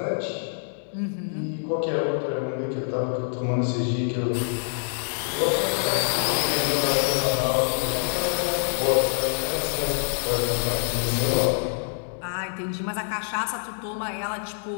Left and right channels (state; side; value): silent; right; digital silence